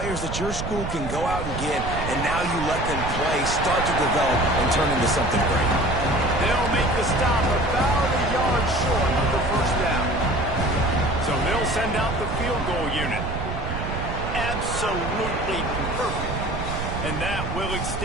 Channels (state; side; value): noise; right; rumble, 5 dB below the sound